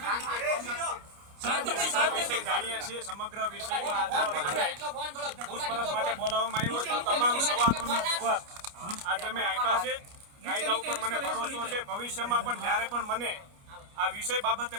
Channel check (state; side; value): late; left; 29 ms